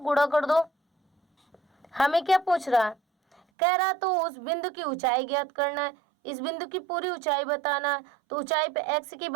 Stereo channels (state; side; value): drops out; left; at 3.4 s